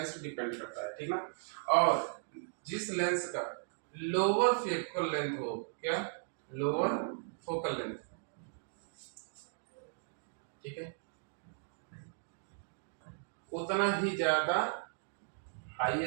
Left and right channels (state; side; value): silent; left; digital silence